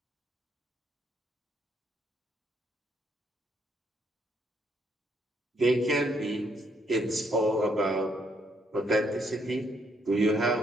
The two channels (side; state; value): both; normal; correlation 0.72